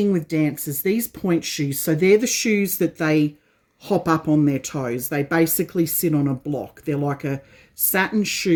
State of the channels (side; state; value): both; identical; correlation 1.00